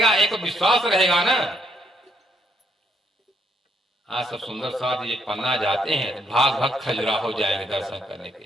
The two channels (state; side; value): normal; both; correlation 0.73